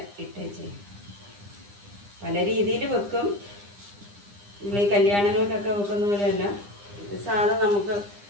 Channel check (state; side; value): late; left; 9.9 ms